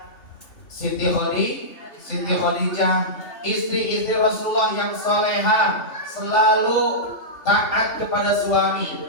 Siti Khadijah, istri-istri Rasulullah yang soleha, selalu taat kepada suami.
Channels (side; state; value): right; late; 3.1 ms